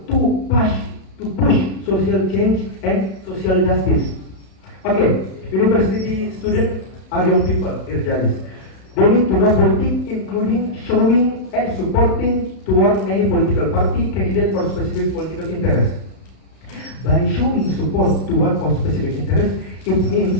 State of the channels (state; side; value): late; right; 32 ms